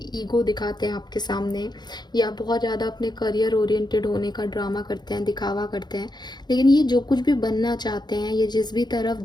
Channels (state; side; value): late; right; 0.21 ms